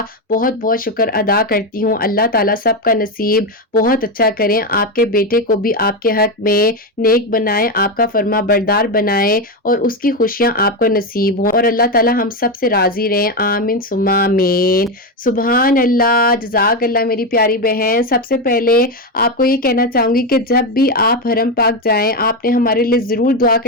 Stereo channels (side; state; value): both; normal; correlation 0.11